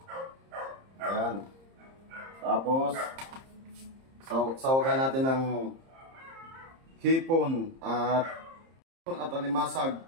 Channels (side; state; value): left; late; 30 ms